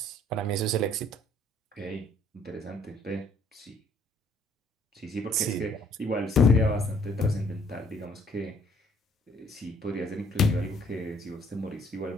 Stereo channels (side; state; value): both; normal; correlation 0.62